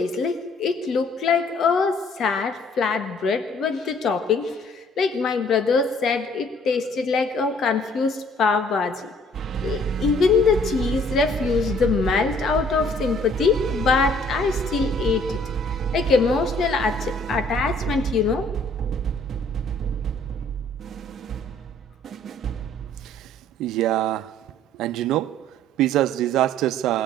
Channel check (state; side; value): normal; both; correlation 0.59